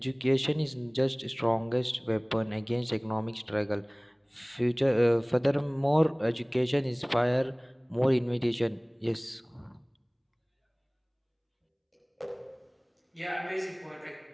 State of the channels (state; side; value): identical; both; correlation 1.00